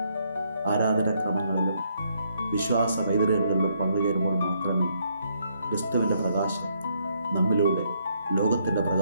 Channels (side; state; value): both; inverted; correlation -0.72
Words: ആരാധനാക്രമങ്ങളിലും വിശ്വാസ വൈതൃകങ്ങളിലും പങ്കുചേരുമ്പോൾ മാത്രമേ ക്രിസ്തുവിൻ്റെ പ്രകാശം നമ്മിലൂടെ ലോകത്തിൻ്റെ